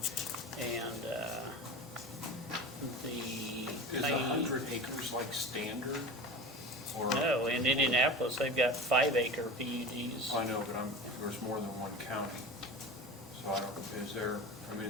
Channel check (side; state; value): both; normal; correlation 0.32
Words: and Is 100 acres like standard? Or, No, in Indianapolis, they've got 5-acre PUDs. I know, but there's more than one county. So I don't, is there, I mean,